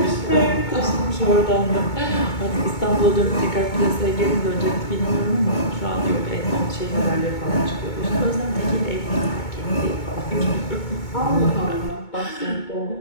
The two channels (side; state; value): right; late; 2.2 ms